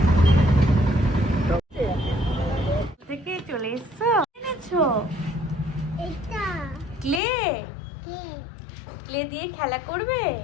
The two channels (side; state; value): right; drops out; at 7.2 s